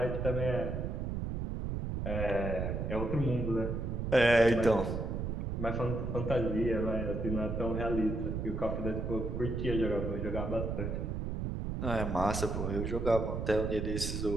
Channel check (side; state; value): right; noise; rumble, 2 dB below the sound